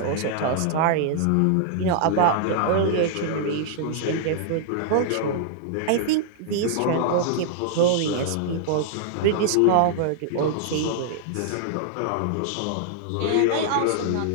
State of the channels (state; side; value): different; both; correlation -0.01